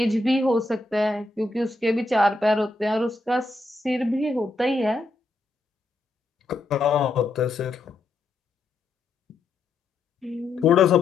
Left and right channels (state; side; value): quieter; right; 3.1 dB